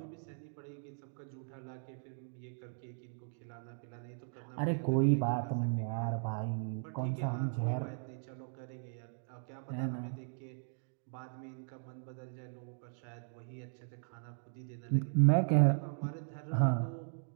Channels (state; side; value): silent; left; digital silence